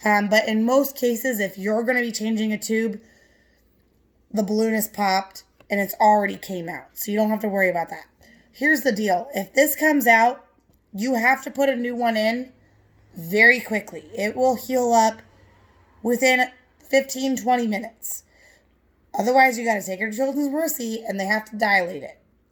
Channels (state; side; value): identical; both; correlation 1.00